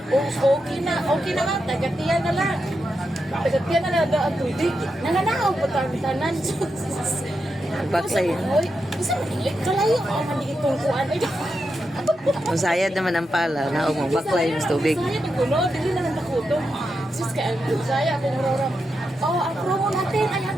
Okay na nga. Tagatiyan na lang. Tagatiyan na lang ang tubig. Nananahaw po tanan. Baksay. Oy, isa kalayo ako mandigit kong kuan. Musayad naman ang pala na mo baklay mas tubig. Saya di kuno, dili na lang nakuto. Sus ka saya ako ngorong. Oh, ang promo natin ay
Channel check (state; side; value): normal; both; correlation 0.86